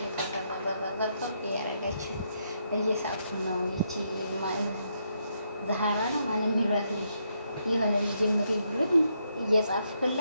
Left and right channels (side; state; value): both; inverted; correlation -0.78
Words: ተቀጣጣጣጣ እያደረጋችሁ እየሳቁ ነው። ይቺ ዛሃራ ነው ማንም የሚሏት ልጅ የሆነ ልጅ ጀምሪ ብሎኝ